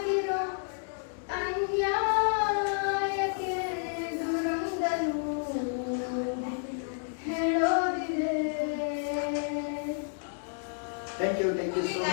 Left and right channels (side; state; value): right; silent; digital silence